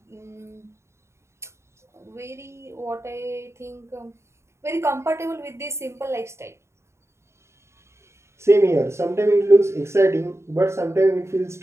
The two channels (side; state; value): left; late; 0.13 ms